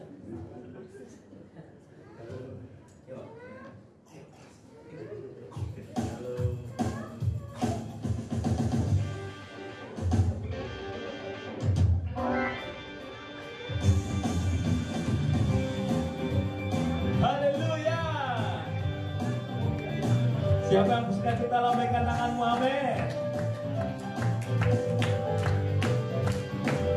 Siapa yang bersuka kita lambaikan tanganmu, amin.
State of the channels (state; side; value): identical; both; correlation 1.00